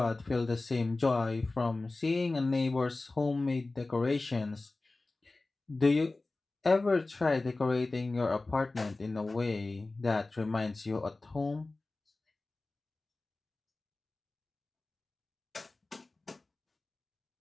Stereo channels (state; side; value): quieter; right; 3.3 dB